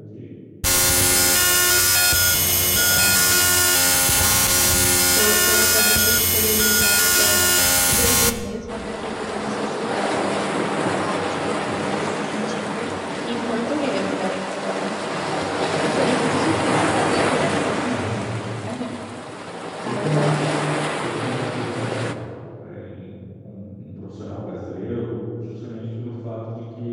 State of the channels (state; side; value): identical; both; correlation 1.00